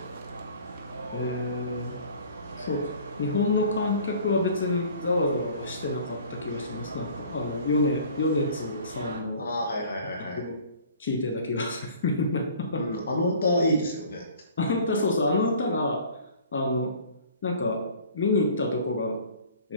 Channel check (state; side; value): inverted; both; correlation -0.49